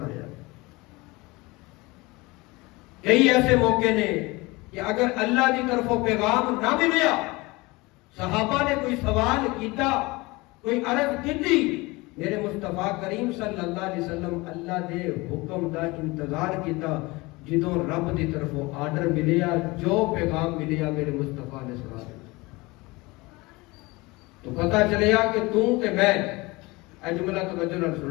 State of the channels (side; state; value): right; quieter; 23.2 dB